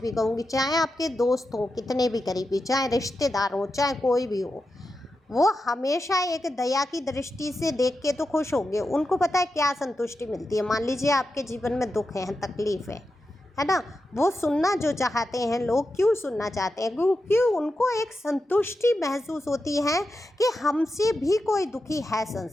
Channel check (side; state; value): both; normal; correlation 0.89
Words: कहूँगी, चाहे आपके दोस्त हो कितने भी करीबी, चाहे रिश्तेदार हो, चाहे कोई भी हो, वो हमेशा एक दया की दृष्टि से देख के तो खुश होंगे। उनको पता है क्या संतुष्टि मिलती है। मान लीजिए आपके जीवन में दुख है, तकलीफ है ना, वो सुनना जो चाहते हैं लोग, क्यों सुनना चाहते हैं? क्योंकि उनको एक संतुष्टि महसूस होती है कि हमसे भी कोई दुखी है